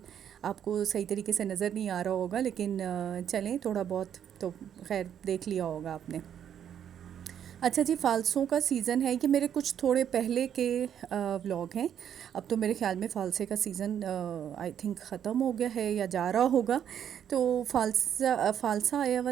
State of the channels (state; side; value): quieter; left; 9.2 dB